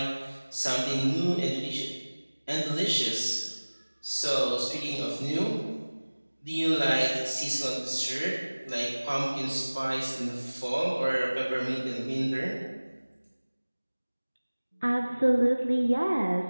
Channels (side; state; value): both; inverted; correlation -1.00